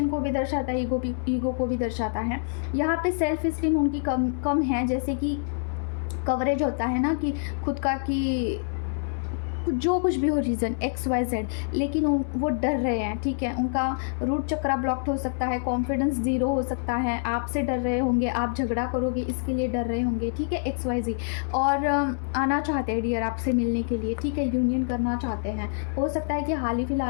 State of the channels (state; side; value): silent; right; 61 dB below the other